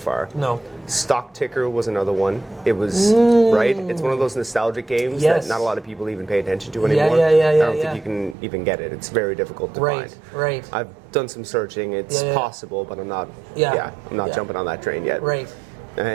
No. Stock Ticker was another one. It was right. It's one of those nostalgic games Yes. that not a lot of people even pay attention to Yeah, anymore. yeah, I don't yeah. think you can even get it. It's very difficult to Right, find. right. I've done some searching. It's Yeah, yeah. possible, but I'm not. Yeah. I'm not Yeah. jumping on that train yet. Right.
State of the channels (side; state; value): left; drops out; at 8.3 s